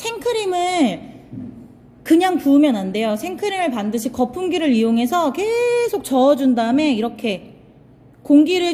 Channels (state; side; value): identical; both; correlation 1.00